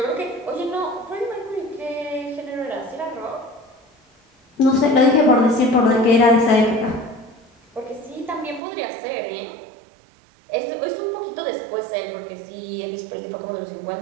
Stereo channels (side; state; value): left; drops out; at 8.6 s